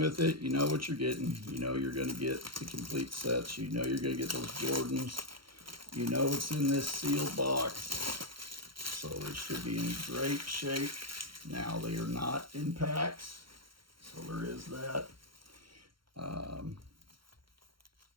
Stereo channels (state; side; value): late; left; 0.73 ms